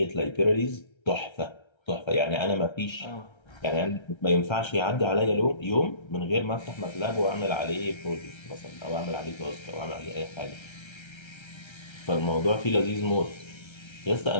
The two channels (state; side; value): late; right; 1.3 ms